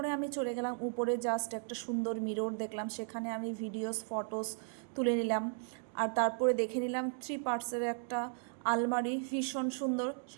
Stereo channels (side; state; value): left; silent; 54 dB below the other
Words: আমি চলে গেলাম উপরে, জাস্ট একটা সুন্দর মিরর দেখলাম, সেখানে আমি ভিডিওস ফটোস তুলে নিলাম। আর তারপরে দেখে নিলাম 3 পার্টসের একটা আলমারি, ভীষণ সুন্দর।